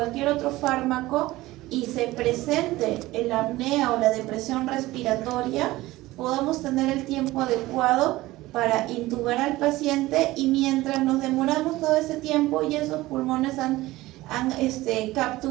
otro fármaco y se presente la apnea o la depresión respiratoria, podamos tener el tiempo adecuado para intubar al paciente, y mientras nos demoramos todo ese tiempo y esos pulmones han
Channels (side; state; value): left; quieter; 18.1 dB